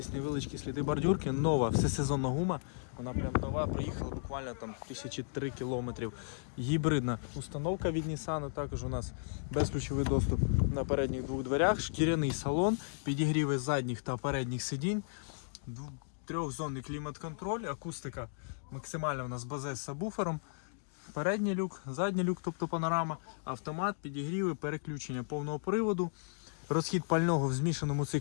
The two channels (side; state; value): right; silent; digital silence